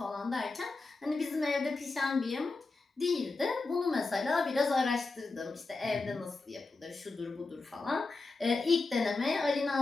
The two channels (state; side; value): quieter; right; 3.7 dB